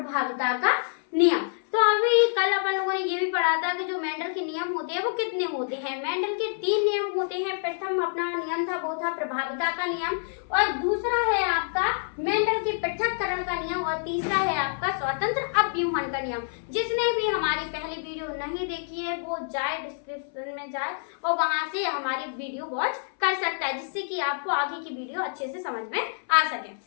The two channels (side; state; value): right; silent; 60 dB below the other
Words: का नियम। तो अभी कल अपन लोगों ने ये भी पढ़ा था कि जो मेंडल के नियम होते हैं वो कितने होते हैं। मेंडल के 3 नियम होते हैं। प्रथम अपना नियम था वो था प्रभाविता का नियम, और दूसरा है आपका मेंडल के पृथक्करण का नियम, और तीसरा है आपका स्वतंत्र अपव्यूहन का नियम। जिसने भी हमारी पहली वीडियो नहीं देखी है वो जाए डिस्क्रिप्शन में जाए और वहां से हमारी वीडियो वॉच कर सकता है, जिससे कि आपको आगे की वीडियो अच्छे से समझ में आ सके।